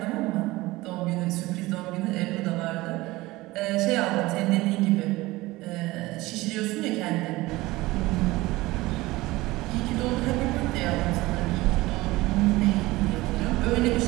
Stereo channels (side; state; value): left; quieter; 19.6 dB